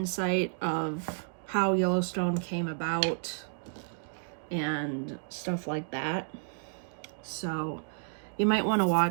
of how Yellowstone came about and stuff like that. So you might want to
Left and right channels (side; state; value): left; silent; digital silence